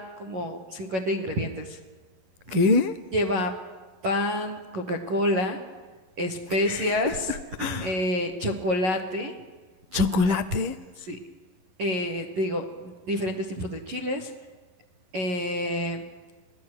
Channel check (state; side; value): late; left; 11 ms